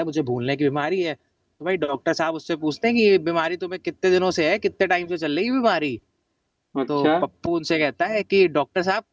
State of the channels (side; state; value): both; identical; correlation 1.00